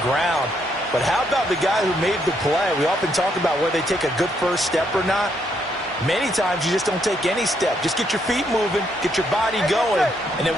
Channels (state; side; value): normal; both; correlation 0.74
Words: ground. But how about the guy who made the play? We often talk about whether they take a good first step or not. Many times you just don't take any step. Just get your feet moving, get your body going, and then